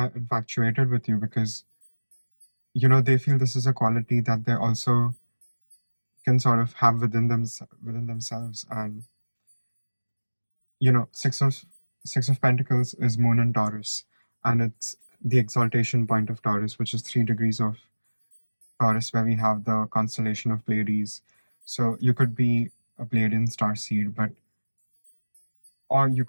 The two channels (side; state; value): both; inverted; correlation -1.00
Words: infatuated with you, because, they feel this is a quality that they also can sort of have within themselves. And, Six of Pentacles is Moon in Taurus, and it's the exaltation point of Taurus, which is 3 degrees of Taurus, where we have the constellation of Pleiades. So you could be a Pleiadian starseed, or you